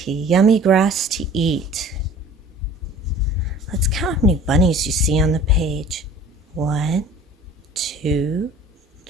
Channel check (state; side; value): normal; both; correlation 0.46